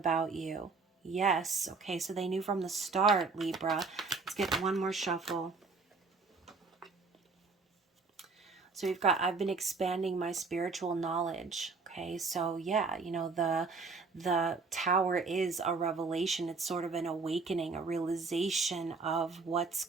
you. Yes. Okay, so they knew from the start, Libra. Let's get one more shuffle. So we've got, I've been expanding my spiritual knowledge. Okay, so yeah, you know, the Tower is a revelation. It's sort of an awakening, a realization of what's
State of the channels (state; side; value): quieter; left; 4.3 dB